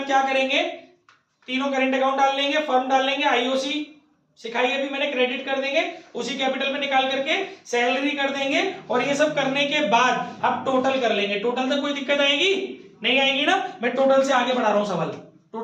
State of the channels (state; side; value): identical; both; correlation 1.00